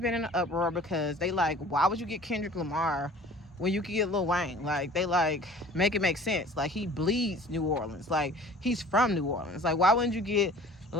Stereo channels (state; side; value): normal; both; correlation 0.47